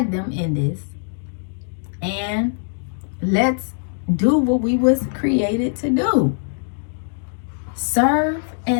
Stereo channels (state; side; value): silent; right; digital silence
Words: them in this. And let's do what we was created to do. Serve